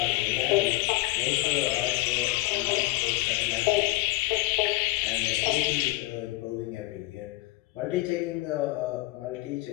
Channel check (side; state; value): right; quieter; 19.2 dB